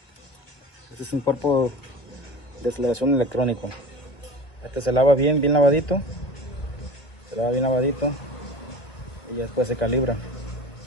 es un cuerpo de aceleración electrónico. Este se lava bien lavadito, y después se calibra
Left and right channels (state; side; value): late; right; 1.5 ms